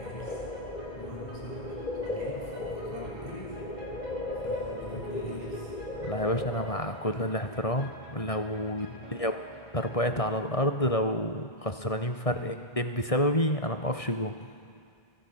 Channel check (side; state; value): right; late; 1.6 ms